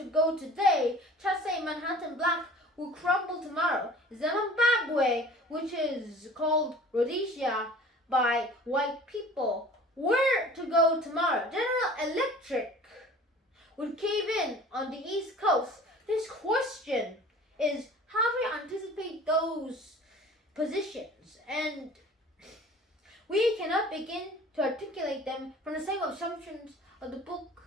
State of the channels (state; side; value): normal; both; correlation 0.45